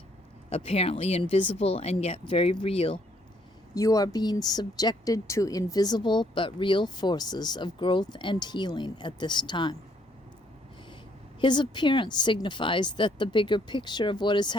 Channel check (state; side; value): normal; both; correlation 0.68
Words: apparently invisible and yet very real, you are being subjected to invisible but real forces of growth and healing at this time. His appearance signifies that the bigger picture of what is